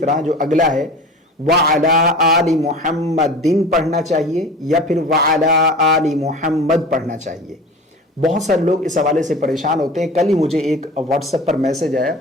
جو اگلا ہے وعلی آل محمد پڑھنا چاہیے، یا پھر وعلی آل محمد پڑھنا چاہیے۔ بہت سارے لوگ اس حوالے سے پریشان ہوتے ہیں۔ کل ہی مجھے ایک واٹس ایپ پر میسج آیا،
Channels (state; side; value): normal; both; correlation 0.37